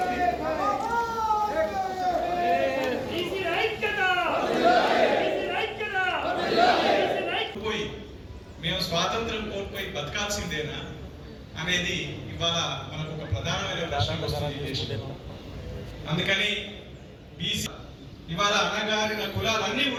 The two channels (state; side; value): identical; both; correlation 1.00